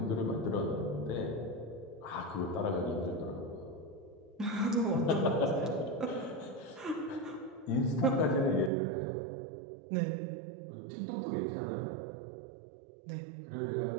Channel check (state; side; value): drops out; left; at 8.7 s